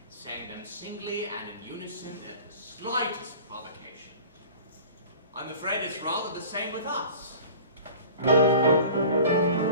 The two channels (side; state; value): both; inverted; correlation -0.43